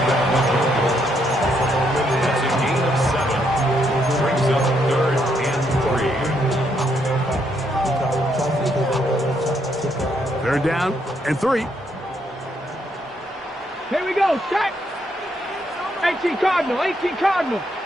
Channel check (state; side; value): normal; both; correlation 0.75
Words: That's a gain of 7. Brings up 3rd and 3. They're down and 3. Here we go, set. 18 Cardinal, 18 Cardinal.